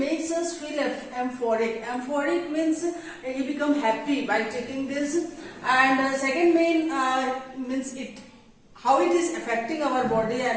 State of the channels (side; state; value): both; identical; correlation 1.00